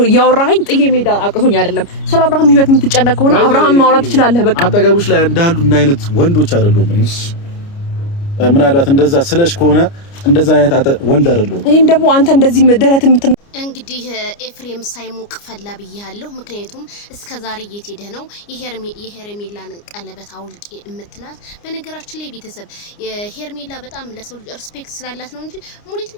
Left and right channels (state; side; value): late; right; 29 ms